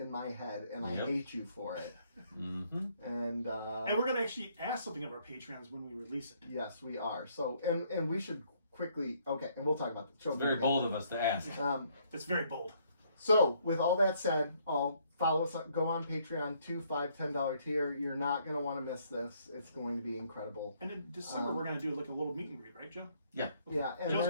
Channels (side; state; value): both; inverted; correlation -0.67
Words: my head, and I Yep. hate you for it." Mm-hmm. And And we're going to actually ask something of our Patreons when we release it. yes, we are. So, and we should quickly. Okay, and we'll talk about the show. It's very bold of us to ask. It's very bold. So, with all that said, I'll follow us. Go on Patreon, $2, $5, $10 tier. You're not going to want to miss this. It's going to be incredible. And in December, we're going to do like a little meet and greet, right, Joe? Yeah. Yeah, and Joe's